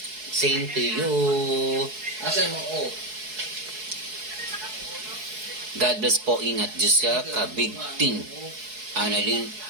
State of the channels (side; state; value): left; late; 4.7 ms